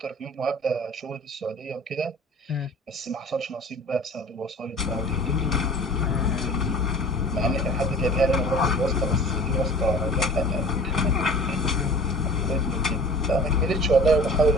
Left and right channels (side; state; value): both; normal; correlation 0.43